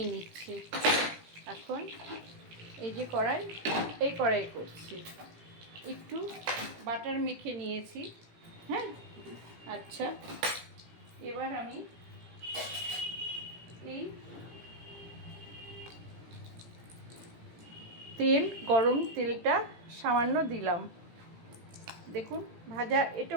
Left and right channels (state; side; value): late; left; 18 ms